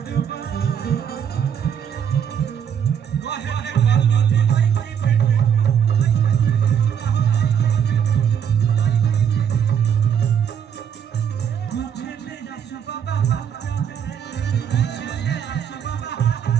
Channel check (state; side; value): quieter; left; 8.2 dB